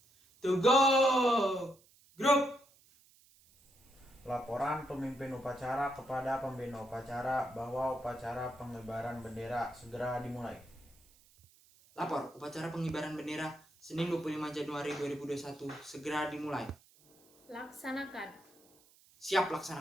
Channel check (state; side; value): noise; right; hiss, 29 dB below the sound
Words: Tegak. Gerak. Laporan pemimpin upacara kepada pembina upacara bahwa upacara pengibaran bendera segera dimulai. Lapor, upacara pengibaran bendera Senin 25 Januari 2021 segera dimulai. Laksanakan. Siap